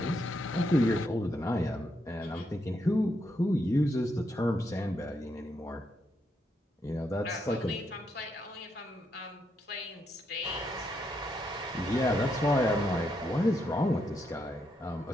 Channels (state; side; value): normal; both; correlation 0.79